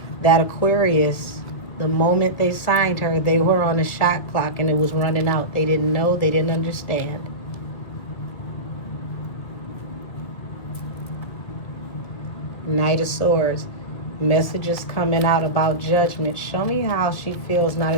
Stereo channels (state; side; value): late; right; 2.3 ms